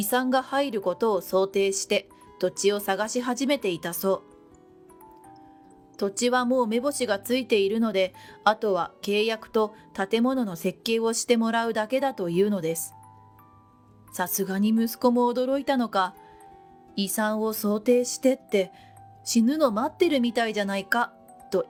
産が入ることを想定して土地を探し始めていたそう。土地はもう目星がついているので、あとは契約と建物の設計をしてもらうだけだというのです。さすがに息子も驚いたのか、遺産を想定してって死ぬの待ってるみたいじゃないかと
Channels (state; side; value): identical; both; correlation 1.00